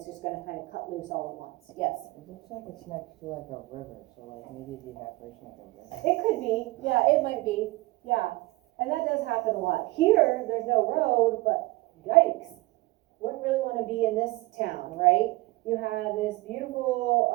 just going to kind of cut loose all at once. Yes? It looks like it's next to like a river, so like maybe the evaporation of the river. It could be. Yeah, it might be. Yeah. And that does happen a lot. Here, there's no road, but yikes. Wouldn't really want to be in this town, right? You have this beautiful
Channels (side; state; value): left; quieter; 21.6 dB